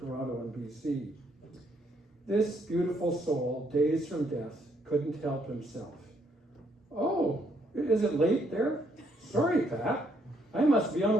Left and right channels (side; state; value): both; normal; correlation 0.71